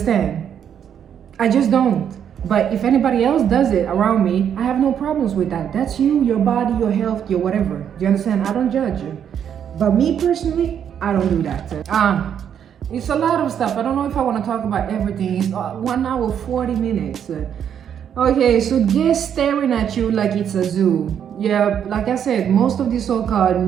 I just don't. But if anybody else does it around me, I have no problems with that. That's you, your body, your health, your whatever. Do you understand? I don't judge you. But me personally, I don't do that. It's a lot of stuff. I don't know if I want to talk about everything. It's 1 hour, 40 minutes. Okay, so guests staring at you like it's a zoo. Yeah, like I said, most of the so-called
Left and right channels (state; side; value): quieter; left; 8.7 dB